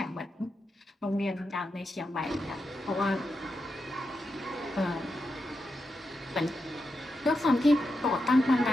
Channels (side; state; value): both; normal; correlation 0.87